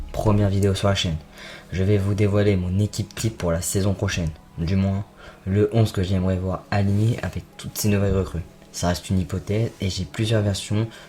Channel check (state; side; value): identical; both; correlation 1.00